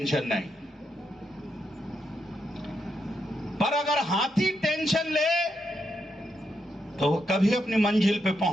नहीं। पर अगर हाथी टेंशन ले तो वो कभी अपनी मंजिल पे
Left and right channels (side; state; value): both; normal; correlation 0.82